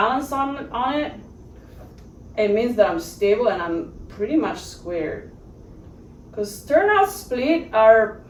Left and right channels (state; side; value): identical; both; correlation 1.00